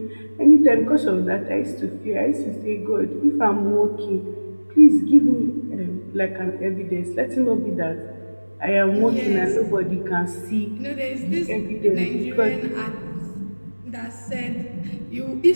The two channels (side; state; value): both; inverted; correlation -1.00